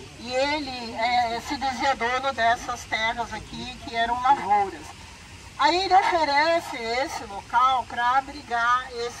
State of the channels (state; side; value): identical; both; correlation 1.00